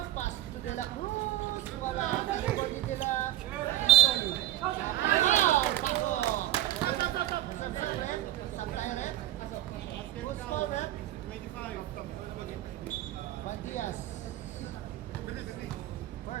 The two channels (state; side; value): quieter; left; 14.3 dB